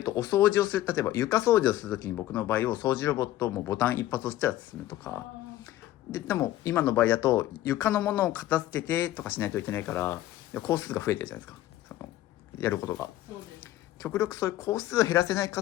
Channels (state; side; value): quieter; right; 14.4 dB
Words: とお掃除をする、例えば床掃除をするときに僕の場合を掃除ロボットもボタン一発押したら進むとかでも今の場合だと床のものを片付けてとかしないといけないから工数が増えてるじゃないですか、そのやることが。極力そういう工数を減らせないか